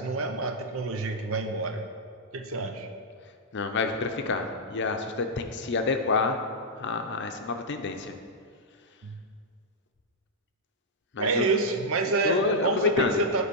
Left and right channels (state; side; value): normal; both; correlation -0.07